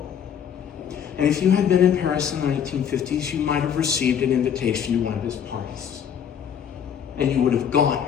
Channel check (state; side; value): quieter; right; 8.3 dB